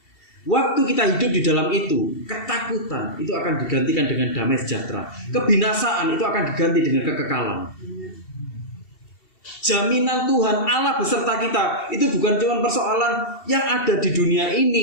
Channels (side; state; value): right; late; 2.7 ms